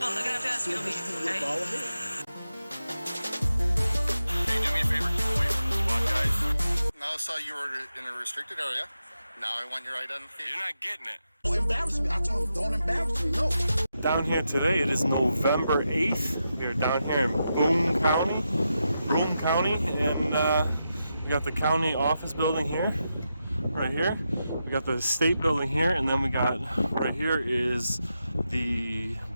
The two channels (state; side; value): inverted; both; correlation -0.87